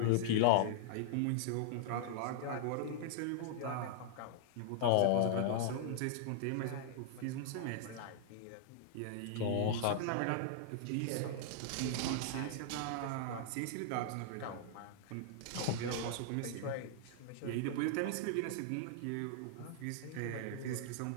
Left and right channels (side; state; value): both; different; correlation -0.01